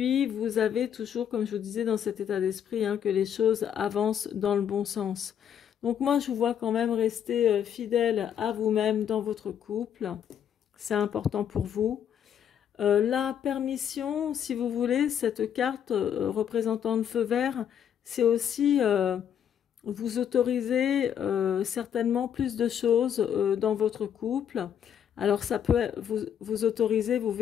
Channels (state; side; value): quieter; right; 9.0 dB